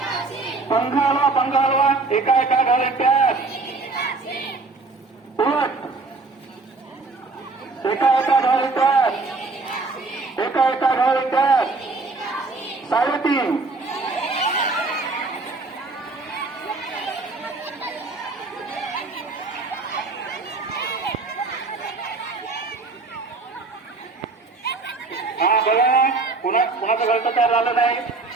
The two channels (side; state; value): left; quieter; 3.7 dB